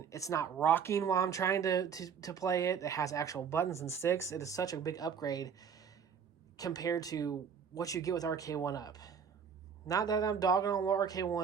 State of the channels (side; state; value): left; quieter; 7.0 dB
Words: it's not rocking while I'm trying to play it. It has actual buttons and sticks. It is such a big upgrade compared to what you get with Arcade1Up. Not that I'm dogging on